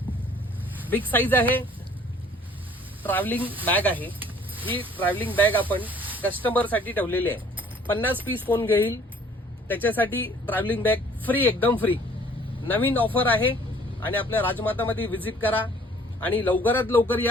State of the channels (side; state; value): both; normal; correlation 0.56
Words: बिग साईज आहे, ट्रॅव्हलिंग बॅग आहे। ही ट्रॅव्हलिंग बॅग आपण कस्टमर साठी ठेवलेली आहे। 50 पीस कोण घेईल त्याच्यासाठी ट्रॅव्हलिंग बॅग फ्री, एकदम फ्री नवीन ऑफर आहे। आणि आपल्या राजमातामध्ये व्हिजिट करा आणि लवकरात लवकर